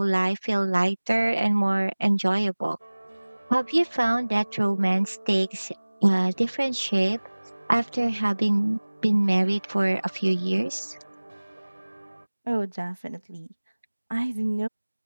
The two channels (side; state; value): both; inverted; correlation -1.00